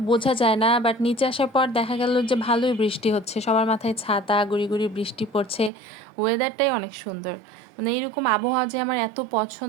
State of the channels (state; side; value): drops out; left; at 5.7 s